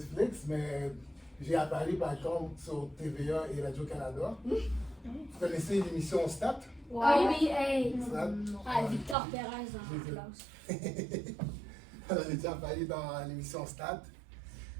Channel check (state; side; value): drops out; left; at 9.2 s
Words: mais j'ai apparu par contre sur TVA et Radio-Canada. Vous connaissez l'émission Stat? Oui, oui, hey. Stat? Ah, Victor Perez en classe. Alors, j'ai déjà apparu dans l'émission Stat.